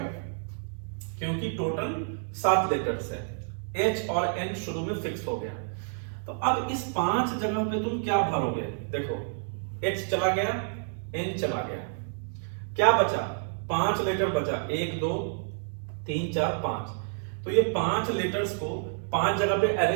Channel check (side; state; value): left; silent; 59 dB below the other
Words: क्योंकि टोटल 7 लेटर्स है। H और N शुरू में फिक्स हो गया। तो अब इस 5 जगह पे तुम क्या भरोगे? देखो H चला गया, N चला गया, क्या बचा? 5 लेटर बचा, 1 2 3 4 5। तो ये 5 लेटर्स को 5 जगह पे